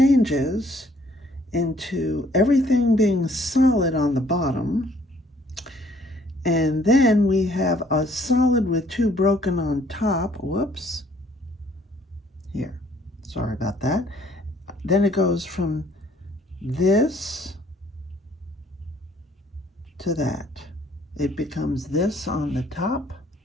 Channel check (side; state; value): both; normal; correlation 0.61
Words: into everything being solid on the bottom. And then we have a solid with 2 broken on top. Whoops. Here. Sorry about that. Then it goes from this to that. It becomes this on the top.